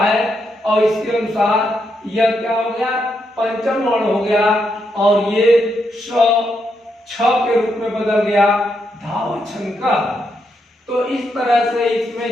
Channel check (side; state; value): both; normal; correlation 0.80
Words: और इसके अनुसार यह क्या हो गया, पंचम वर्ण हो गया और ये छ के रूप में बदल गया धावछंका। तो इस तरह से